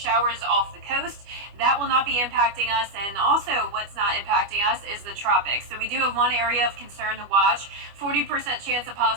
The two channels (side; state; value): left; late; 25 ms